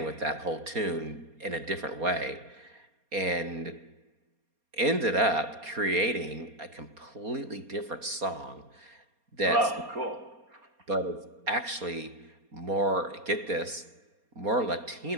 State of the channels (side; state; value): left; late; 4.2 ms